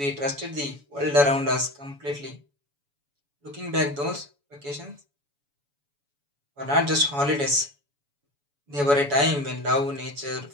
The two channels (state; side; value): late; left; 7.0 ms